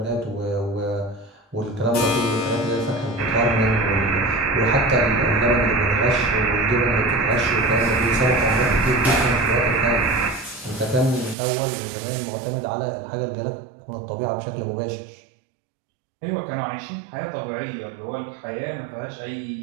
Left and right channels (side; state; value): left; drops out; at 11.4 s